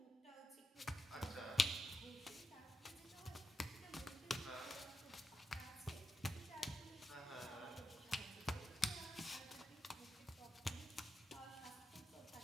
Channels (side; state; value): both; normal; correlation 0.87